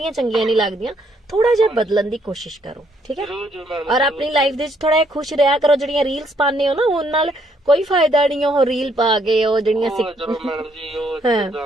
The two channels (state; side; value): normal; both; correlation 0.70